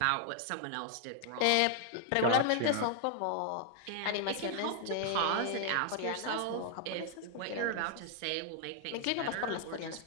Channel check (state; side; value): different; both; correlation 0.00